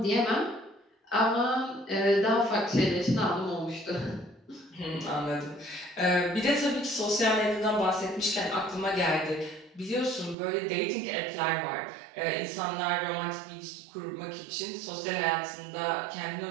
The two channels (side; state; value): left; drops out; at 10.4 s